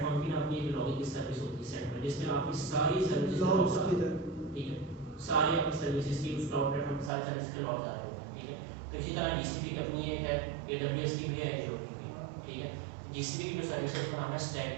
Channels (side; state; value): left; drops out; at 7.1 s